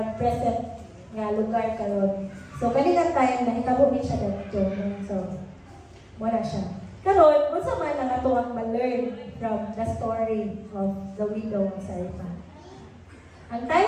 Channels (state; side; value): identical; both; correlation 1.00